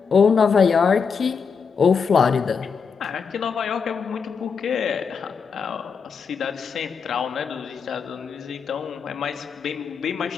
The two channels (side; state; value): right; quieter; 5.9 dB